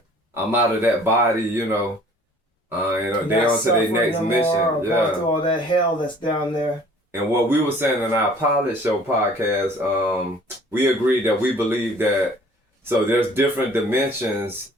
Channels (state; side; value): normal; both; correlation 0.52